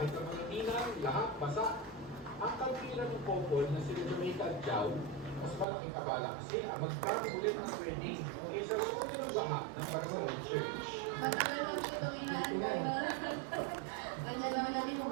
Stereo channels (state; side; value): drops out; left; at 5.7 s